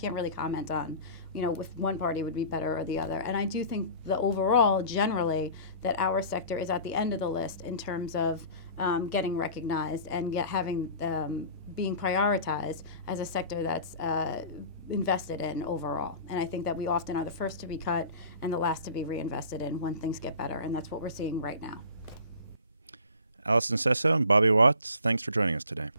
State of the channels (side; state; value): both; inverted; correlation -0.41